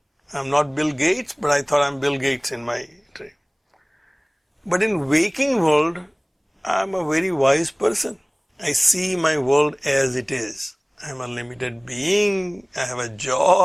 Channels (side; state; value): both; identical; correlation 1.00